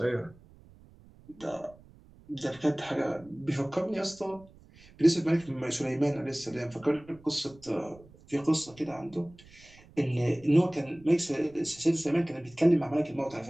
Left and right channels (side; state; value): right; noise; rumble, 24 dB below the sound